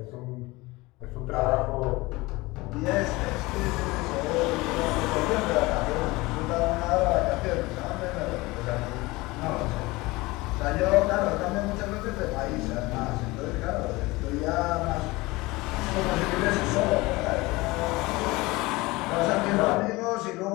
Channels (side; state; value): right; quieter; 21.8 dB